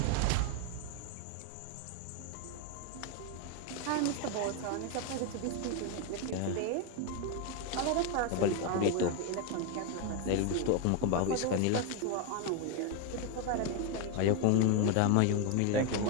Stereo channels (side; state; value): both; different; correlation 0.01